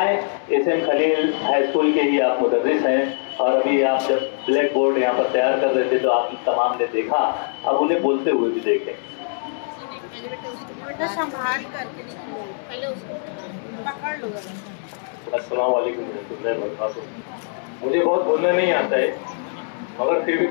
एसएम खलील हाई स्कूल के ही आप मुदर्रिस हैं और अभी आप जब ब्लैक बोर्ड यहाँ पर तैयार कर रहे थे तो आप तमाम ने देखा, अब उन्हें बोलते हुए भी देखें। अस्सलाम वालेकुम। मुझे बहुत बोलना नहीं आता है मगर फिर भी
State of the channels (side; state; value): right; silent; 64 dB below the other